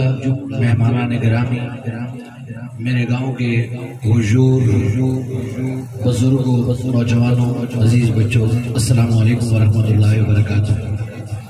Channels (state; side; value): identical; both; correlation 1.00